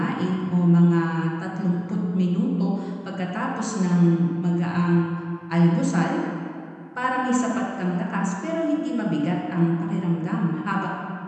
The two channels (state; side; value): identical; both; correlation 1.00